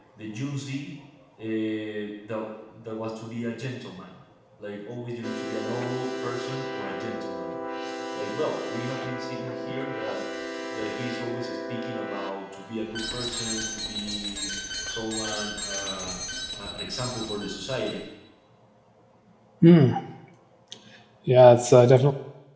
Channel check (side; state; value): both; identical; correlation 1.00